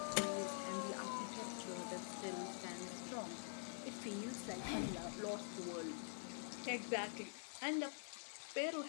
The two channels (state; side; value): silent; right; digital silence